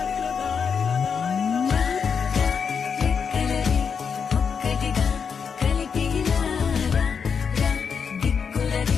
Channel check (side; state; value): right; quieter; 6.3 dB